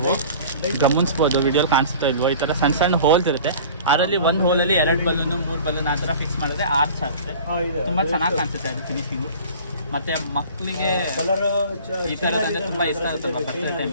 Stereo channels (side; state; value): both; inverted; correlation -0.44